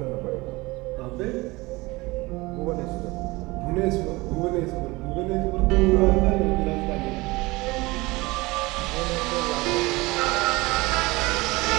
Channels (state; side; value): quieter; left; 22.4 dB